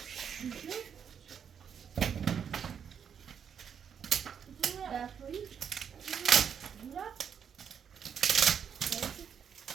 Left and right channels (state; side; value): quieter; left; 7.6 dB